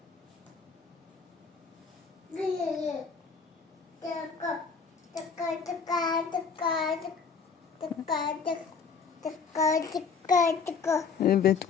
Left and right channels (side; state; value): right; quieter; 5.5 dB